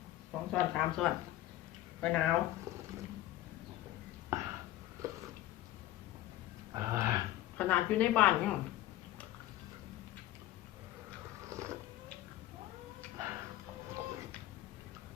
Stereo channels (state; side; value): quieter; right; 14.7 dB